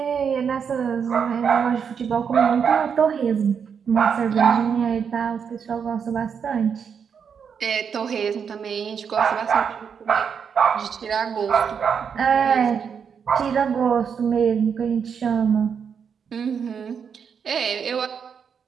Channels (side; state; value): left; quieter; 6.9 dB